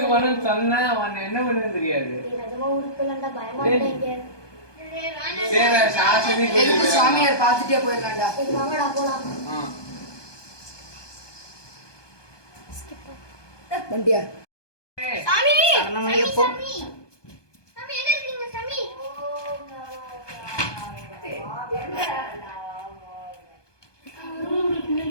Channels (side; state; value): right; late; 1.2 ms